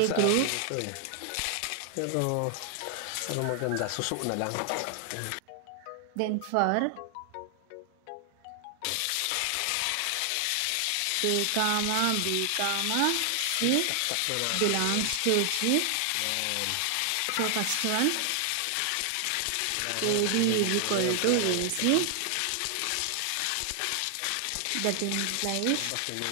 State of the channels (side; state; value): both; different; correlation 0.00